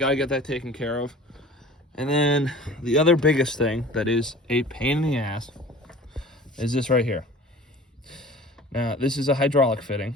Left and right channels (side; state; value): both; normal; correlation 0.43